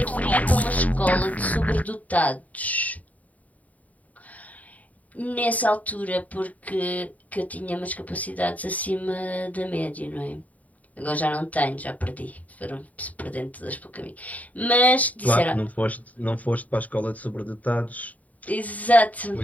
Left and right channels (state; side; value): late; right; 0.072 ms